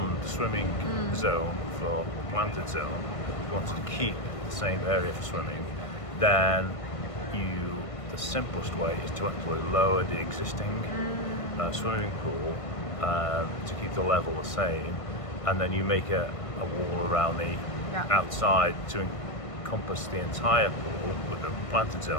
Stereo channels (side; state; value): right; late; 1.5 ms